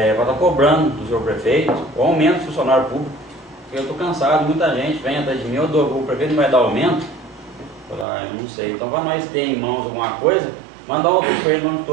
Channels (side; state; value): left; drops out; at 8.1 s